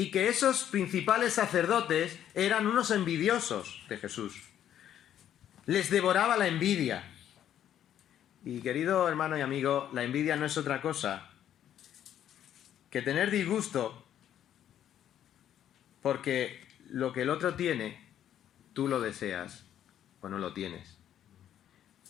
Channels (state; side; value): quieter; right; 10.6 dB